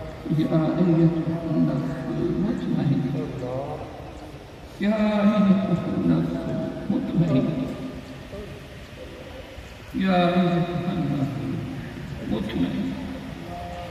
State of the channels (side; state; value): both; identical; correlation 1.00